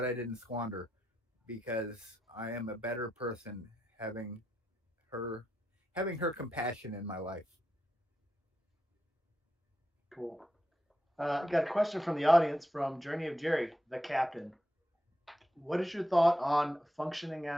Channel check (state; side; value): normal; both; correlation 0.85